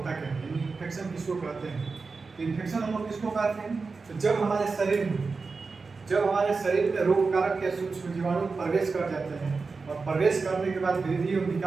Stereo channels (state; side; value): quieter; left; 4.4 dB